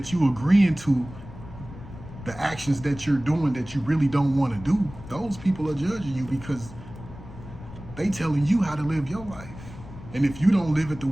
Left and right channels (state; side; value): noise; left; rumble, 15 dB below the sound